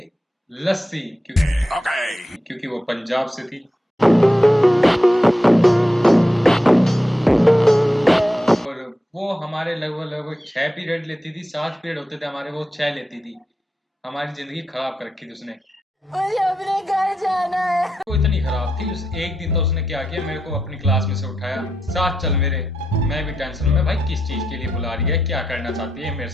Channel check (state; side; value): normal; both; correlation 0.86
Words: लस्सी, क्योंकि वो पंजाब से थी। और वो हमारे लगभग 6 पीरियड लेती थी। 7 पीरियड होते थे हमारे, वो 6 लेती थी। हमारी जिंदगी खराब कर रखी थी उसने। मुझे अपने घर जाना है। वो इतनी खराब थी। उस एक दिन तो उसने क्या किया, मेरे को अपनी क्लास में से उठाया, साथ चल मेरे। मैं भी टेंशन में, भाई किस चीज के लिए बुला रही है, क्या करना चाहती है मेरे